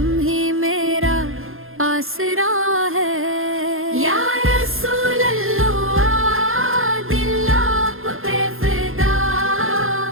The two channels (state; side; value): late; left; 0.60 ms